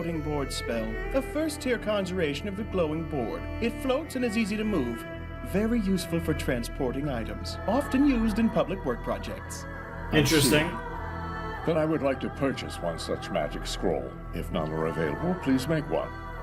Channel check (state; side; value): identical; both; correlation 1.00